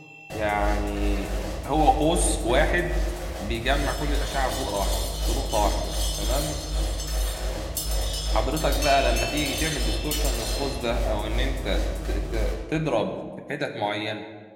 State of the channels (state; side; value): identical; both; correlation 1.00